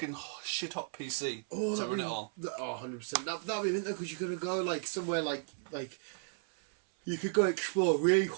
shit-hot PC to run it all. 100%. That'd be mint, because you're going to go, like, somewhere like... You could go explore really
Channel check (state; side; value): silent; left; 55 dB below the other